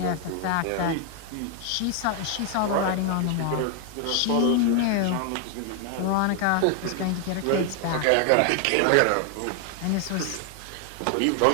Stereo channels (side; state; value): both; different; correlation 0.00